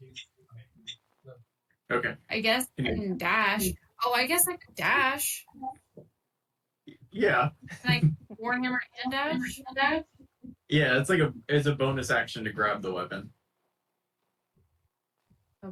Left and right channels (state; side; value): identical; both; correlation 1.00